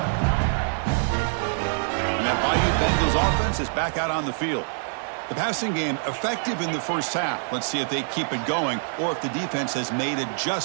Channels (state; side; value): silent; left; digital silence